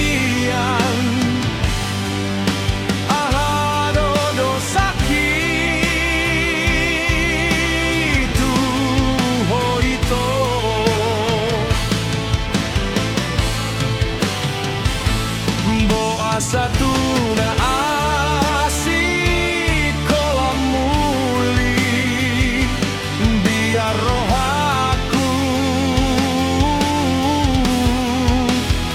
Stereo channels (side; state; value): both; identical; correlation 1.00